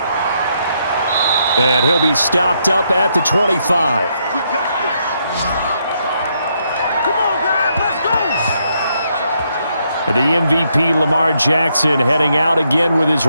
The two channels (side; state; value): both; inverted; correlation -0.76